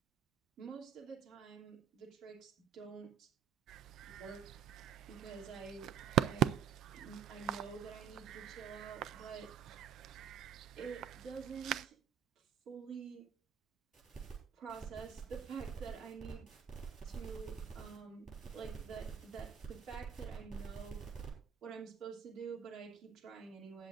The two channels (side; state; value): left; quieter; 8.7 dB